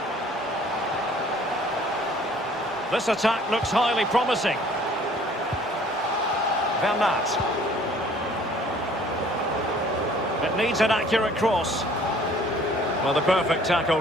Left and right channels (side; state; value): both; normal; correlation 0.55